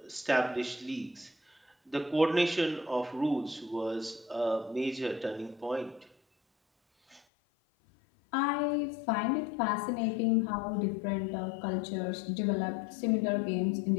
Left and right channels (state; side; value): drops out; right; at 7.2 s